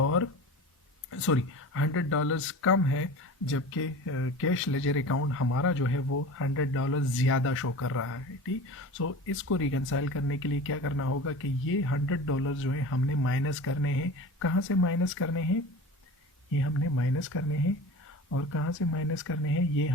$100 कम है, जबकि कैश लेजर अकाउंट हमारा जो है वो $100 ज़्यादा शो कर रहा है. ठीक, सो इसको रिकन्साइल करने के लिए क्या करना होगा कि ये $100 जो है हमने माइनस करने हैं. कहाँ से माइनस करने हैं? ये हमने माइनस करने हैं. और कहाँ से माइनस करने हैं? ये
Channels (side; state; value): both; normal; correlation 0.34